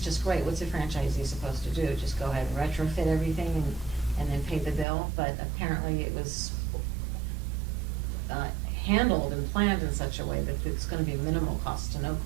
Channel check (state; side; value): drops out; left; at 4.9 s